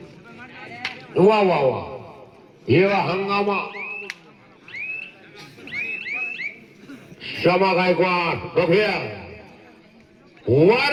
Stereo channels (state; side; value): identical; both; correlation 1.00